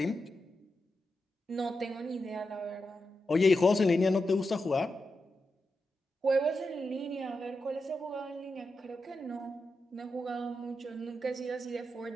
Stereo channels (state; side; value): normal; both; correlation 0.88